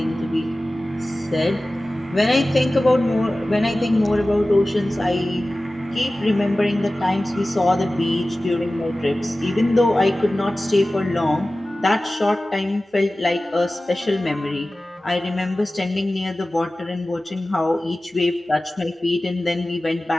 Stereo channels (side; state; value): both; normal; correlation 0.96